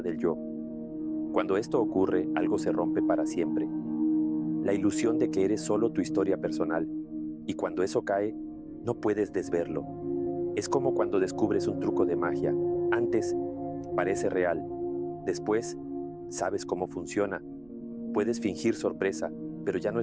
del yo. Cuando esto ocurre, algo se rompe para siempre. La ilusión de que eres solo tu historia personal, y cuando eso cae, no puedes desverlo. Es como cuando descubres un truco de magia. Antes, parece real. Después, sabes cómo funciona. Puedes fingir sorpresa, pero ya no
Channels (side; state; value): right; noise; rumble, 26 dB below the sound